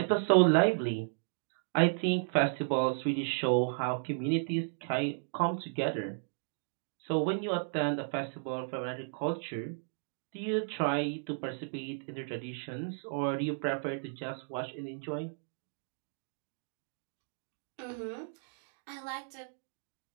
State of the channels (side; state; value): left; silent; digital silence